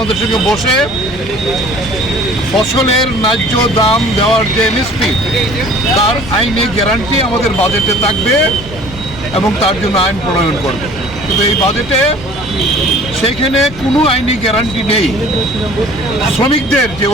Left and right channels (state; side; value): normal; both; correlation 0.50